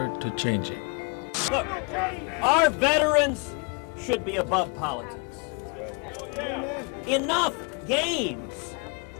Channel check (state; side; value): quieter; right; 34.4 dB